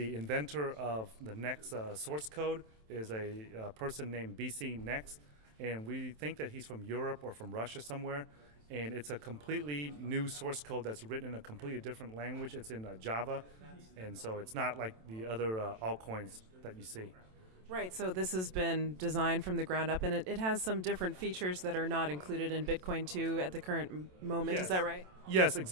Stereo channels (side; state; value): left; late; 27 ms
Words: inventor of the NXT source code is a person named BC NXT, and we think that he's from Europe or from Russia somewhere. And it's a completely new source code that's written in a completely different language. It's in Java, and so it's not like the other altcoins that you see. Right, so this has been designed from the ground up, and it has some different features that are not included in Bitcoin 2 at the current moment. Yes. Is that right? Yes,